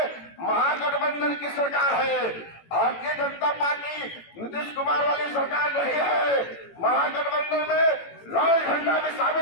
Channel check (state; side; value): late; right; 18 ms